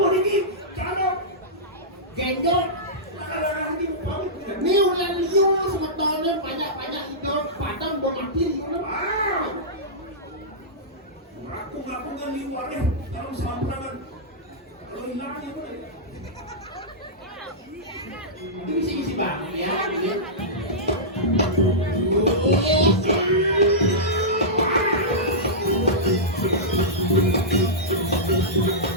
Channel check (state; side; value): normal; both; correlation -0.14